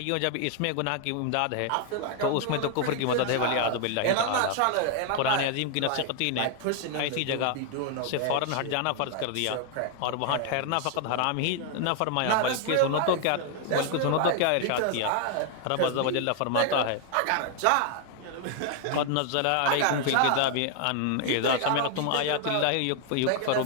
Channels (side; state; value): both; different; correlation 0.00